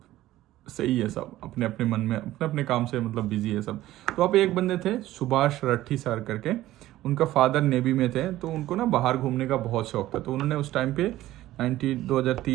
सही है, सब अपने अपने मन में अपने अपने काम से मतलब बिजी है सब। तो वहाँ पे एक बंदे थे सुभाष रट्ठी सर करके, उनका फादर नेवी में थे, तो उनको ना बाहर घूमने का बहुत शौक था। तो उन्होंने उस टाइम पे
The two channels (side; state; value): left; quieter; 15.1 dB